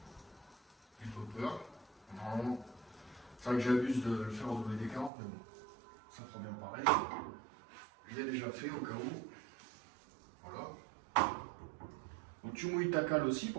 j'ai pas peur. Non, c'est vrai que j'abuse de le faire au WD-40, mais bon, ça fera bien pareil. Je l'ai déjà fait au cas où, voilà. Donc tu mouilles ta cale aussi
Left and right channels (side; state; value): left; drops out; at 5.1 s